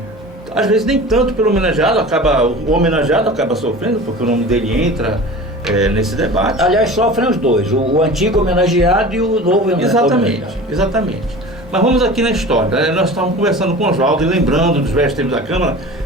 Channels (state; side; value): normal; both; correlation 0.37